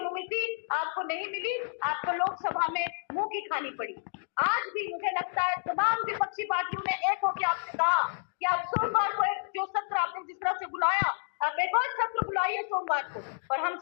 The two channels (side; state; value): right; silent; digital silence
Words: आपको नहीं मिली। आपको लोकसभा में मुंह की खानी पड़ी। आज भी मुझे लगता है तमाम विपक्षी पार्टियों ने एक होकर आपसे कहा कि आप सोमवार को एक जो सत्र आपने जिस तरह से बुलाया, आप एक और सत्र बुलाइए सोमवार को, और हम